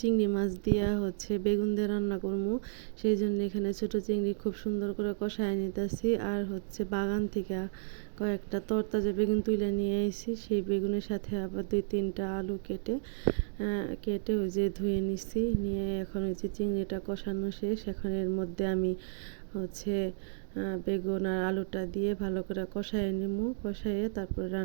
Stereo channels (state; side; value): silent; left; digital silence